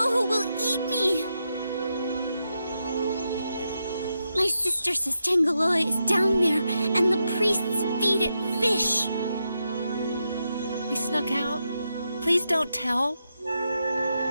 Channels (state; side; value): inverted; both; correlation -0.85